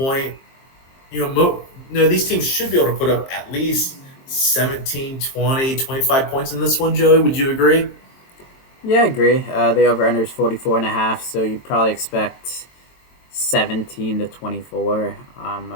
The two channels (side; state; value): right; late; 22 ms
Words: These teams should be able to put up at least 17, 20, 25 points in this one, Joey. Would you agree? Yeah, I agree. The over under is 44.5, so you probably expect 17 to 24,